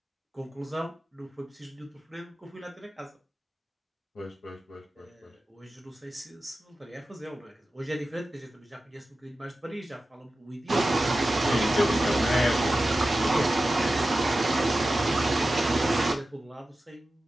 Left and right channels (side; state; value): both; normal; correlation 0.94